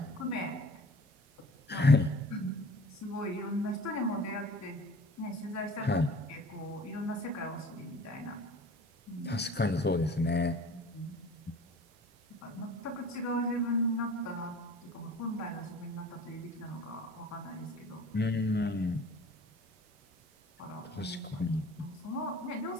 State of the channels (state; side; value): normal; both; correlation 0.45